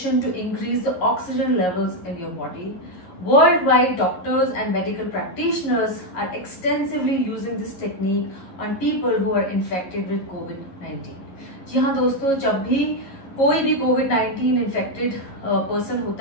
to increase the oxygen levels in your body. Worldwide, doctors and medical practitioners are extensively using this technique on people who are infected with COVID-19. जी हाँ दोस्तों, जब भी कोई भी कोविड-19 infected person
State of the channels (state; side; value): late; right; 11 ms